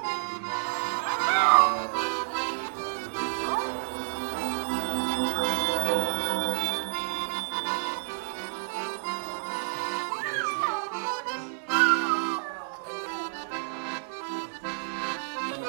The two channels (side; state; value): left; silent; digital silence